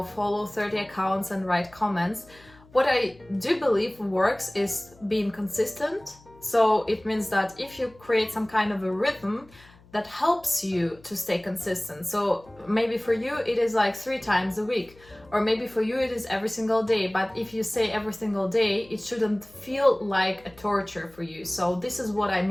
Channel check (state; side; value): noise; left; hum, 26 dB below the sound